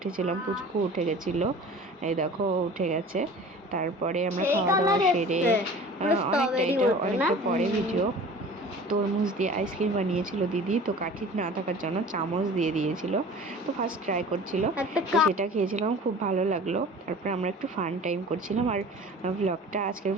পুচকু উঠে গেছিলো। এই দেখো, উঠে গেছে। তারপরে আমরা খাওয়া দাওয়া সেরে অনেকটা পরে ভিডিও। তরমুজ দিয়ে আইসক্রিম বানিয়েছিল দিদি, তো কাঠি না থাকার জন্য চামচ দিয়ে দিয়েছিল। তো ফার্স্ট ট্রাই করছিল, তো সেটা খেয়েছিলাম, খুব ভালো লাগলো। তারপরে আমরা একটু ফান টাইম করছিলাম। আর আজকের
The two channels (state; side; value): normal; both; correlation 0.42